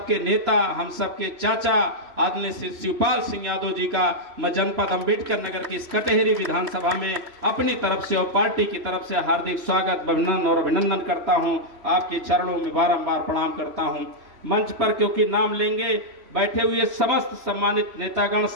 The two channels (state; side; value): late; left; 3.1 ms